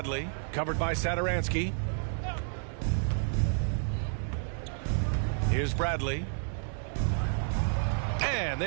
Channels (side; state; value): left; silent; 57 dB below the other